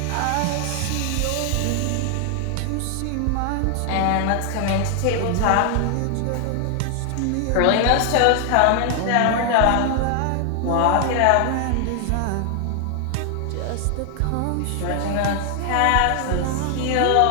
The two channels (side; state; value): both; different; correlation 0.00